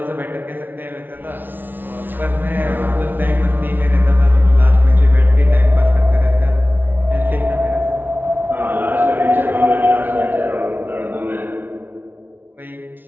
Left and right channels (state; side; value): late; left; 0.092 ms